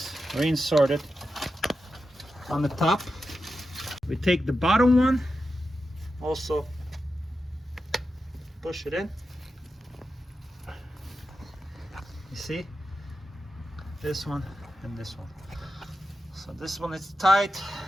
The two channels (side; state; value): both; normal; correlation 0.90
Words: reinserted on the top. We take the bottom one, also push it in. You see? This one and this one. So this one is tight,